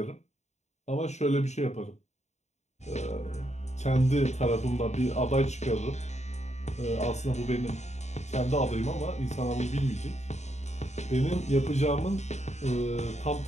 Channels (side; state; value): right; late; 0.33 ms